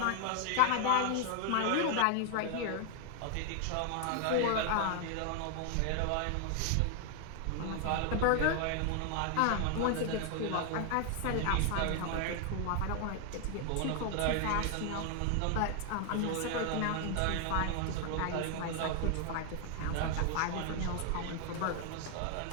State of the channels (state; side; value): different; both; correlation 0.00